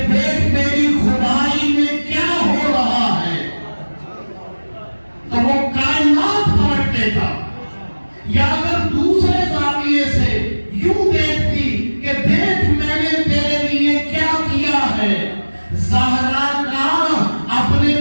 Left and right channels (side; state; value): both; inverted; correlation -1.00